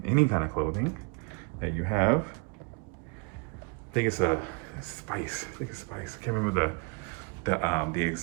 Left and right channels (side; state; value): left; quieter; 31.9 dB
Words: any kind of clothing that you have. I think it's a spice. I can't remember the